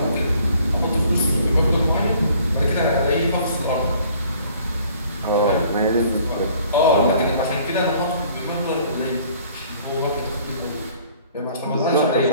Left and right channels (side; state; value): both; inverted; correlation -0.57